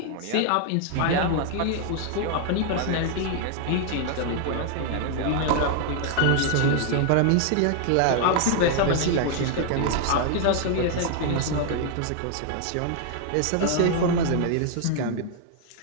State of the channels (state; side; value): different; both; correlation 0.00